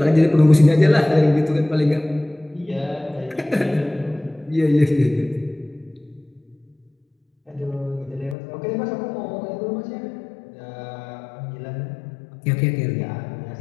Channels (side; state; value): right; drops out; at 8.3 s